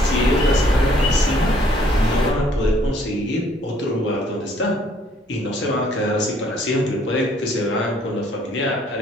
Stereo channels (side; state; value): both; normal; correlation 0.63